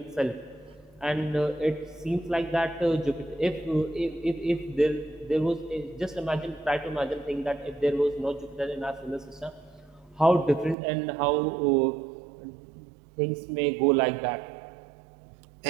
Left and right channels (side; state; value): left; drops out; at 10.8 s